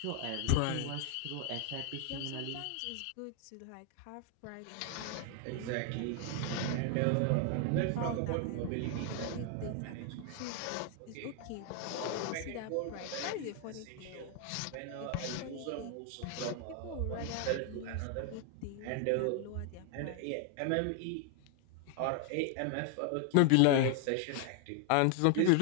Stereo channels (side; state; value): both; different; correlation 0.00